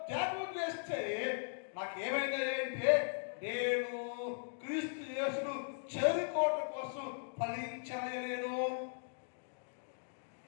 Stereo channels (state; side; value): silent; right; digital silence